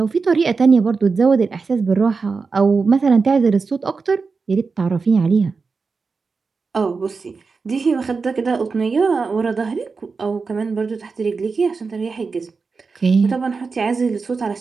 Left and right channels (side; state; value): left; quieter; 4.6 dB